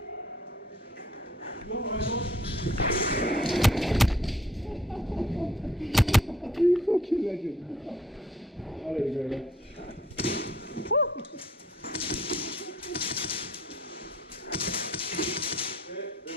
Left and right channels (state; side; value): normal; both; correlation 0.60